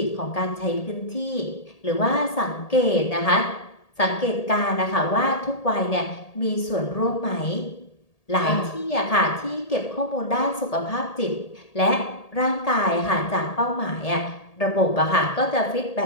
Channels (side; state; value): right; late; 1.8 ms